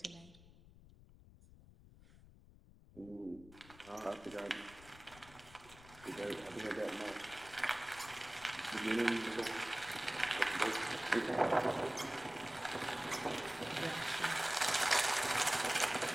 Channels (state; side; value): noise; left; rumble, 21 dB below the sound